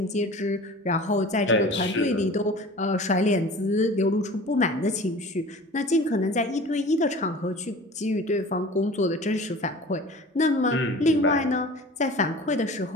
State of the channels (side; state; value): both; normal; correlation 0.41